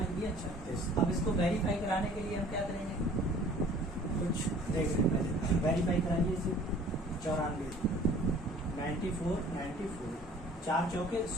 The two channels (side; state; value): both; normal; correlation 0.50